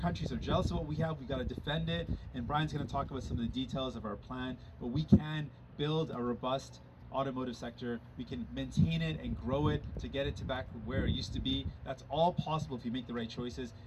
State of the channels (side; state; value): both; identical; correlation 1.00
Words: are jealous of what we have. We've got to defend it. And Brian's going to talk about some of the details of our plan. But we can build a robust automotive sector. We can maintain it and grow it to get it to back where it used to be. That's all possible if you make the right choices,